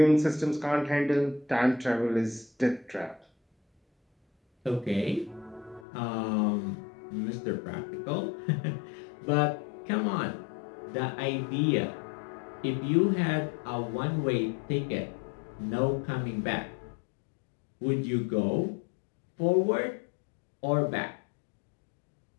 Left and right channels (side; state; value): right; drops out; at 5.9 s